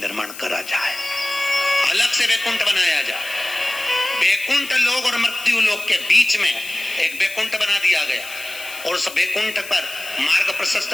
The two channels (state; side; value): noise; left; hiss, 14 dB below the sound